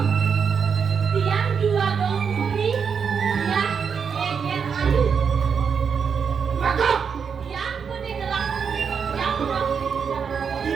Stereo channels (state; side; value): quieter; left; 6.5 dB